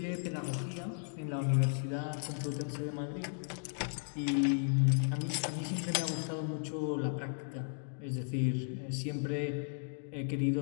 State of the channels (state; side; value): silent; right; digital silence